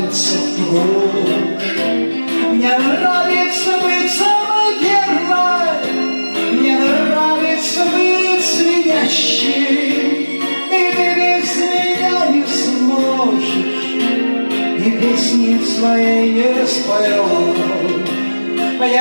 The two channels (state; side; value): inverted; both; correlation -1.00